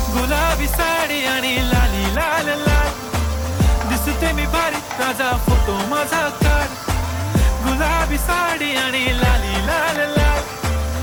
गुलाबी साडी आणि लाली लाल लाल, दिसते मी भारी राजा फोटो माझा काढ. गुलाबी साडी आणि लाली लाल लाल,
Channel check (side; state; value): both; identical; correlation 1.00